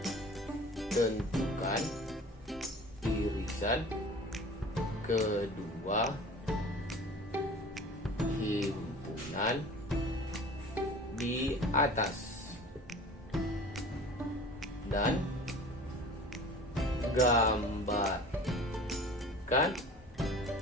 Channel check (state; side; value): normal; both; correlation 0.42